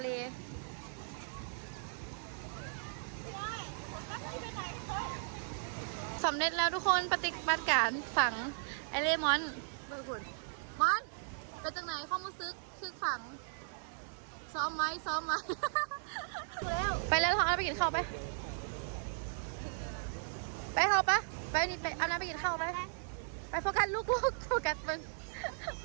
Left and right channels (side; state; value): left; silent; digital silence